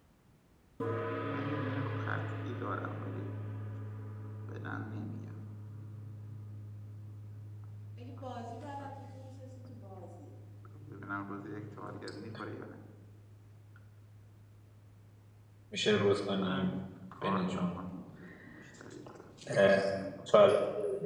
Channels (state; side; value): identical; both; correlation 1.00